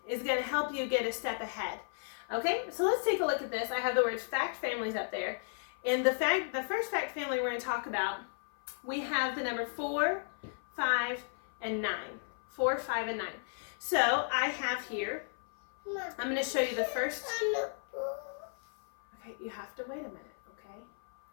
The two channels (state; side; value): silent; right; 55 dB below the other